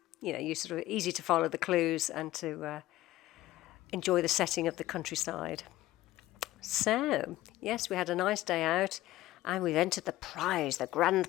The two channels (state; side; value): quieter; right; 16.2 dB